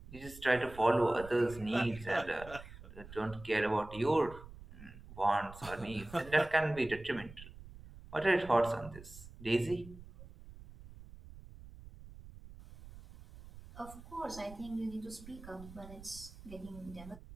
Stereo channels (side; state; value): right; noise; rumble, 17 dB below the sound